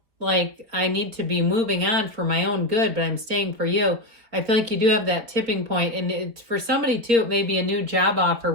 like I need to be moving on for my own good, but I'm staying for you. I feel like you do have that tipping point. And for somebody, too, it may be a new job offer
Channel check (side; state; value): left; late; 4.5 ms